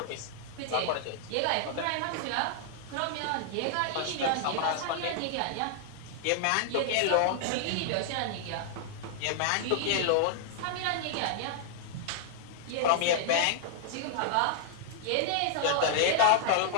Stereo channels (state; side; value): different; both; correlation -0.01